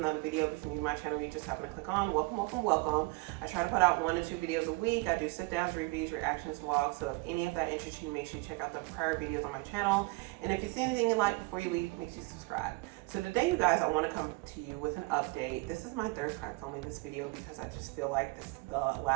video. If you're new to my channel, you just happen to click on. Welcome. I try to put out 1 to 2 videos a week. I do sit downs, reviews, reactions, vlogs. So if any of that interests you, make sure you check out the prior videos on my channel. And if you see anything you like before you leave, make sure you subscribe. So today, you guys, I want to come to you with an update. This is my third time filming this video because I just feel like the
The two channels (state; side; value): quieter; left; 25.6 dB